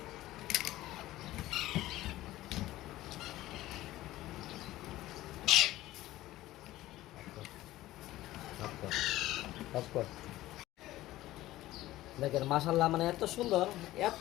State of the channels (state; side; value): quieter; right; 16.1 dB